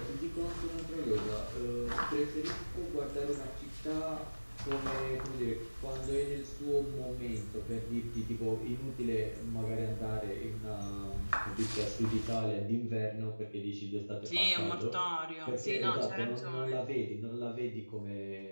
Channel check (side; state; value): both; inverted; correlation -1.00